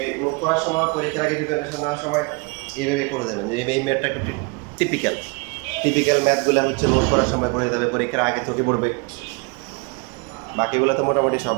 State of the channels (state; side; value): quieter; left; 30.0 dB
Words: মুখ করার সময় পরীক্ষার আগে প্রিপারেশন নেওয়ার সময় এইভাবে করে যাবেন যে এই ম্যাথটা একটু টিপিক্যাল ম্যাথগুলো হচ্ছে নোট করার সময় করে যাবে পরীক্ষার আগে থেকে পড়বে বাকিগুলো তো মোটামুটি